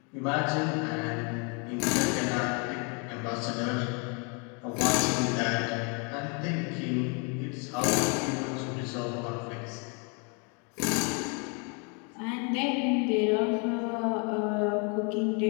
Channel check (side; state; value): right; quieter; 34.6 dB